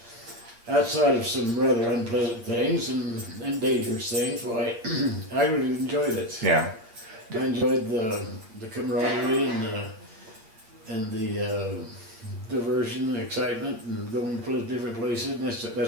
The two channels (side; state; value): left; late; 8.8 ms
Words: outside of some rather unpleasant things and dangerous things, well, I really enjoyed it. Yeah. I enjoyed the camaraderie and the diversion and excitement and going different places. And